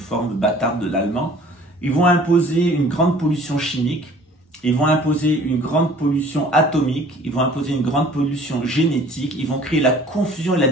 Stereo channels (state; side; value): normal; both; correlation 0.51